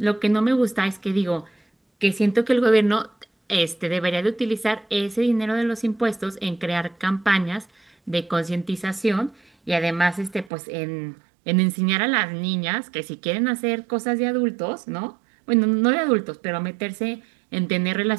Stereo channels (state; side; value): drops out; left; at 10.5 s